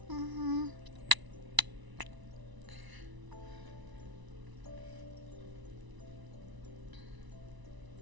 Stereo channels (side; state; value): left; late; 1.0 ms